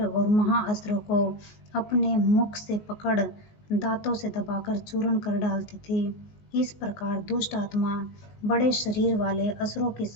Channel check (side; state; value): right; late; 19 ms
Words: और महाअस्त्रों को अपने मुख से पकड़ दांतों से दबाकर चूर्ण कर डालती थी। इस प्रकार दुष्ट आत्मा बड़े शरीर वाले असुरों की